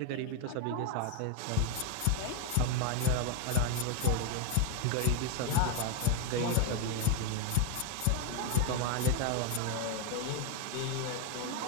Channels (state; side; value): different; both; correlation 0.01